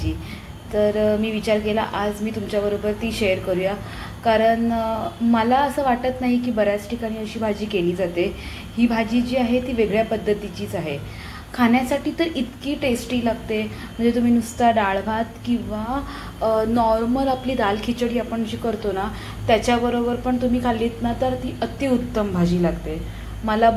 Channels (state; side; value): identical; both; correlation 1.00